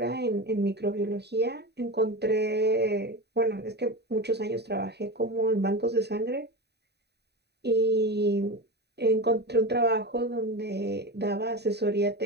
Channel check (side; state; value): left; late; 0.48 ms